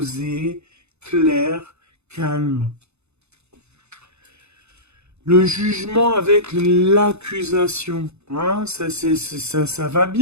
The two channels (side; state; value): left; late; 0.81 ms